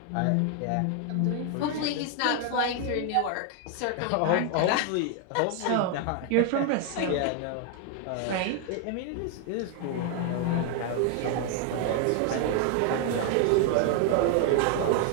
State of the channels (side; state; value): both; different; correlation 0.00